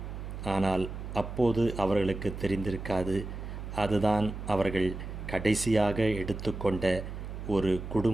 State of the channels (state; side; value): noise; right; hum, 8 dB below the sound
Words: ஆனால் அப்போது அவர்களுக்கு தெரிந்திருக்காது, அதுதான் அவர்கள் கடைசியாக எடுத்துக்கொண்ட ஒரு